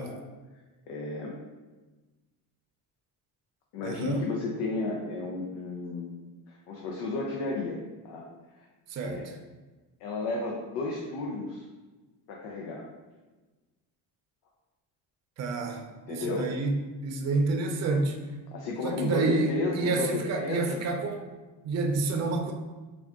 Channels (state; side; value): normal; both; correlation 0.31